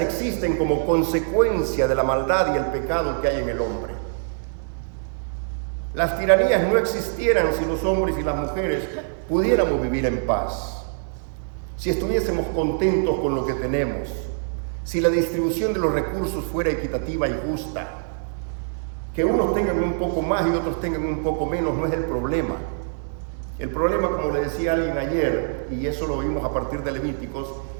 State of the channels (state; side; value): silent; left; digital silence